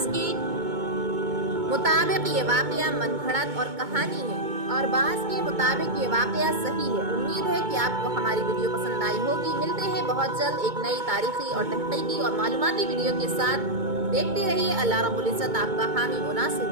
کے مطابق یہ واقعہ من گھڑت اور کہانی ہے اور بعض کے مطابق یہ واقعہ صحیح ہے۔ امید ہے کہ آپ کو ہماری ویڈیو پسند آئی ہوگی۔ ملتے ہیں بہت جلد ایک نئی تاریخی اور تحقیقی اور معلوماتی ویڈیو کے ساتھ۔ دیکھتے رہیے۔ اللہ رب العزت آپ کا حامی و ناصر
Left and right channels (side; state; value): left; late; 2.2 ms